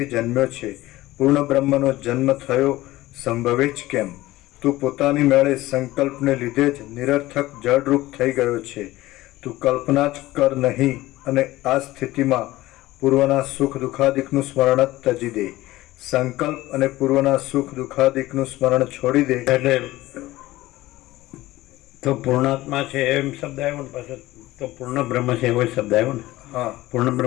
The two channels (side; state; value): right; quieter; 17.3 dB